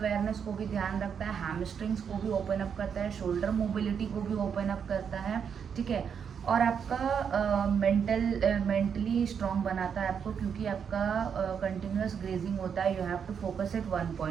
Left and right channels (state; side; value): quieter; left; 7.2 dB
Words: को भी ध्यान रखता है, हैमस्ट्रिंग्स को भी ओपन अप करता है, शोल्डर मोबिलिटी को भी ओपन अप करता है। ठीक है। और आपका मेंटली स्ट्रॉन्ग बनाता है आपको, क्योंकि आपका कंटिन्यूस ग्रेजिंग होता है। You have to focus at one